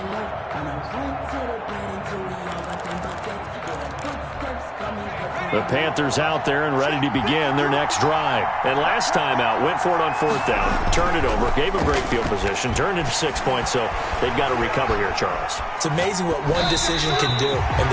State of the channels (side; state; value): both; identical; correlation 1.00